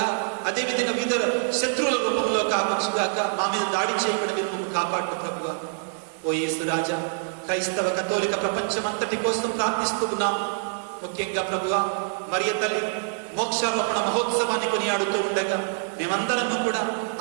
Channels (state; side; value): silent; left; digital silence